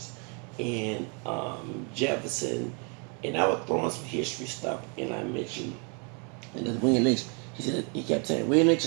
and Jefferson, and I was throwing some history stuff, and I mentioned and then William Lynch. He kept saying William Lynch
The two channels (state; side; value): quieter; left; 35.9 dB